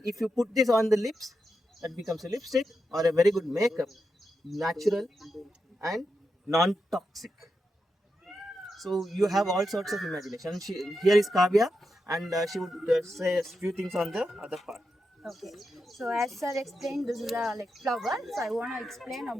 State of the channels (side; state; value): both; normal; correlation 0.87